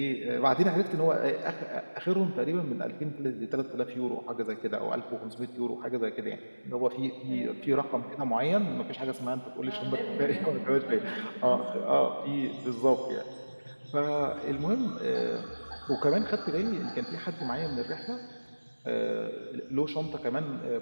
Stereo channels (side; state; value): both; inverted; correlation -1.00